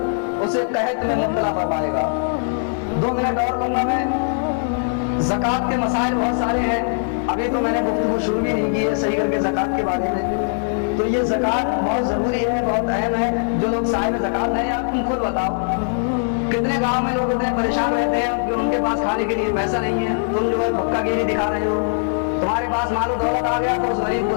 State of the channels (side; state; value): right; silent; digital silence